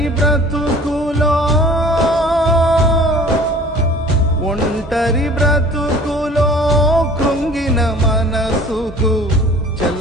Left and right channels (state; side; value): normal; both; correlation 0.48